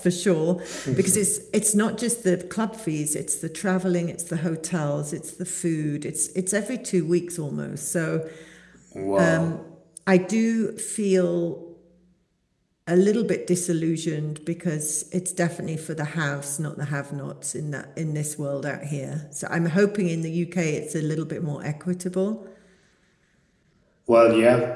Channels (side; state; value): both; identical; correlation 1.00